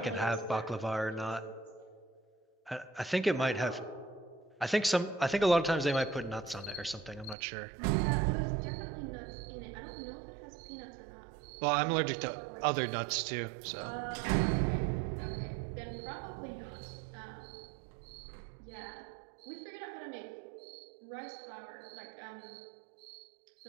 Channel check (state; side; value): drops out; left; at 7.4 s